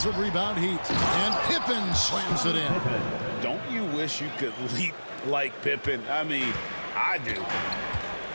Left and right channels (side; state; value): both; inverted; correlation -1.00